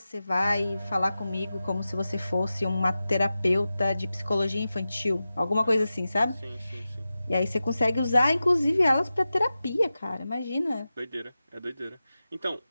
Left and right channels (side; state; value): both; inverted; correlation -0.94